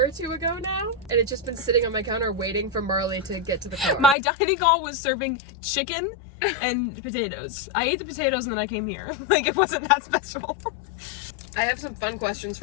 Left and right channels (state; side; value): drops out; right; at 4.2 s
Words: or two ago now, and it's just been sitting on my counter waiting for Marley to get to the car. My dining hall was serving chicken and potatoes. I ate the potatoes and then I came here. Like, it wasn't that special. I have some fun questions